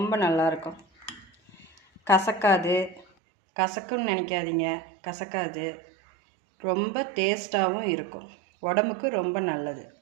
நல்லாயிருக்கும். கசக்குன்னு நினைக்காதீங்க, கசக்காது. ரொம்ப டேஸ்ட்டாகவும் இருக்கும். உடம்புக்கு ரொம்ப நல்லது.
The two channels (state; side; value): drops out; left; at 3.1 s